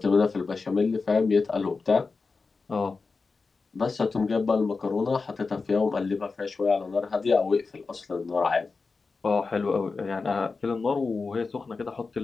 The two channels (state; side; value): quieter; right; 4.3 dB